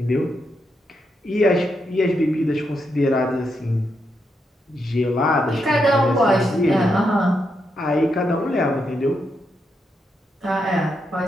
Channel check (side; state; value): both; normal; correlation 0.82